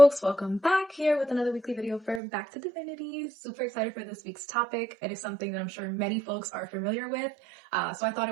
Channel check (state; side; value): drops out; left; at 2.2 s